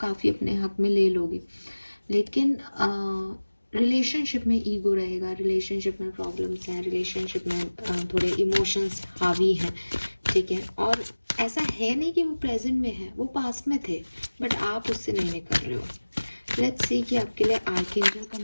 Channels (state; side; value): inverted; both; correlation -1.00